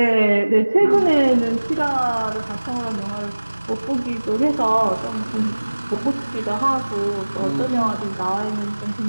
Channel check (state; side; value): inverted; both; correlation -1.00